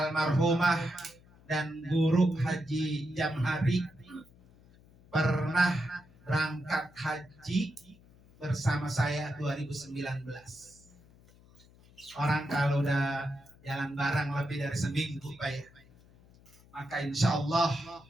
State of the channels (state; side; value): noise; left; hum, 26 dB below the sound